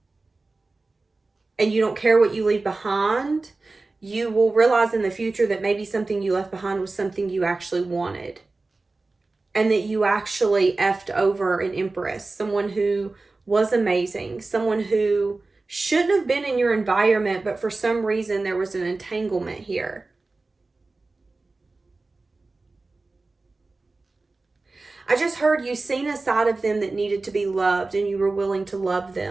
and you don't care what you leave behind, you will realize in the future that maybe something you left behind was something you actually wanted. And that you actually effed over an empress, someone who was amazing, someone who shouldn't have been in your environment, but for some reason there was an entanglement here. I just heard you seen a side of them that needed to be loved and you were willing to love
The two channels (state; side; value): quieter; left; 3.5 dB